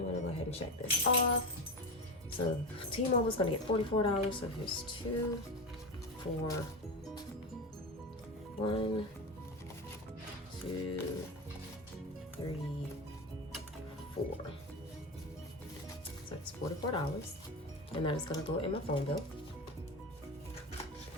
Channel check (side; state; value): both; normal; correlation 0.20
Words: gonna go ahead and check this off. So T-Mobile is gonna get $44. So here's 2, 4, 1, 2, 3, 4. So it's $44. And that is gonna go in my phone bill.